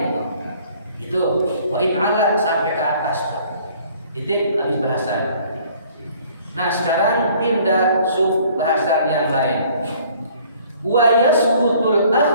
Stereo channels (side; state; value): both; inverted; correlation -0.56